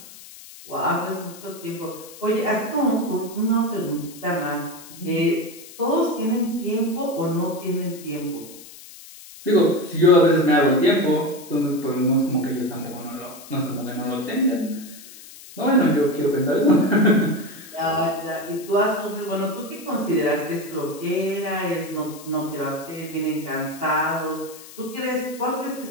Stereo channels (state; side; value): noise; left; hiss, 18 dB below the sound